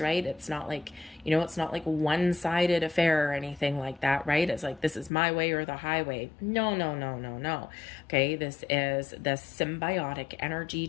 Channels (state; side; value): drops out; right; at 5.1 s